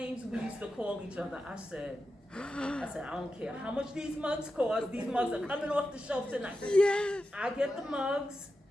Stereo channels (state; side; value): normal; both; correlation 0.90